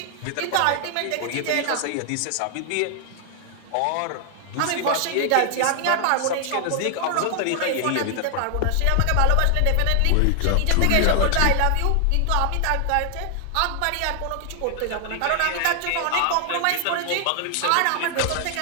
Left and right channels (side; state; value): both; different; correlation 0.00